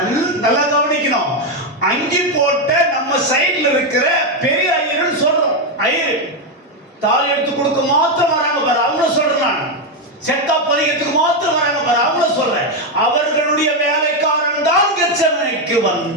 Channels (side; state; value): both; normal; correlation 0.06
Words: நல்லா கவனிக்கணும். அங்கி போட்ட நம்ம சைடுல இருக்கிற பெரிய ஐயர்னு சொல்றோம். ஐயர் தாலி எடுத்து கொடுக்க மாத்திரம் வராங்க பாரு, அவங்கள சொல்றேன் நான். செத்தா பதிகத்துக்கு மாத்திரம் வராங்க பாரு, அவங்கள சொல்றேன். அவர்களுடைய வேலைக்காரன் தான் கெத்செமனேக்கு